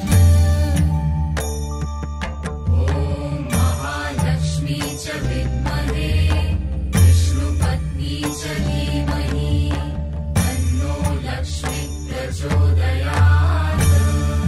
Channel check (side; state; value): both; identical; correlation 1.00